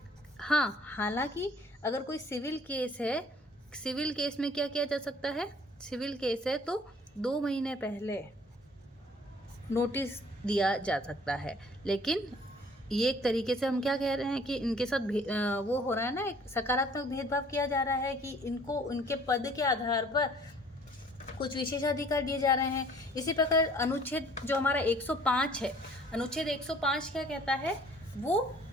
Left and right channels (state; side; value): normal; both; correlation 0.55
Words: हाँ, हालांकि अगर कोई सिविल केस है, सिविल केस में क्या किया जा सकता है, सिविल केस है तो 2 महीने पहले नोटिस दिया जा सकता है। लेकिन ये एक तरीके से हम क्या कह रहे हैं कि इनके साथ वो हो रहा है ना, एक सकारात्मक भेदभाव किया जा रहा है कि इनको उनके पद के आधार पर कुछ विशेषाधिकार दिए जा रहे हैं। इसी प्रकार अनुच्छेद जो हमारा 105 है, अनुच्छेद 105 क्या कहता है, वो